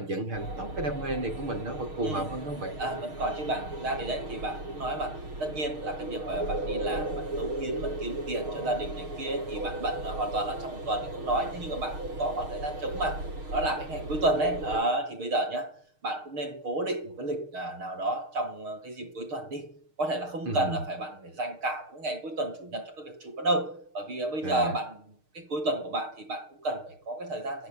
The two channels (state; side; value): late; left; 6.5 ms